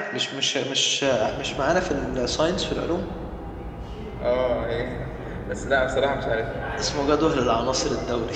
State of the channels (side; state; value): both; identical; correlation 1.00